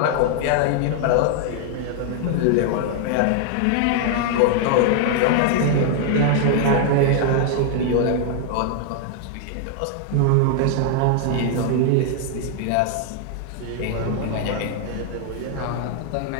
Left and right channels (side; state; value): both; different; correlation 0.00